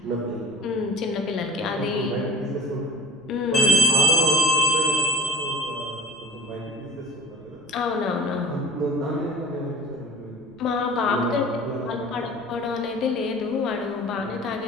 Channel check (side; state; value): right; noise; rumble, 28 dB below the sound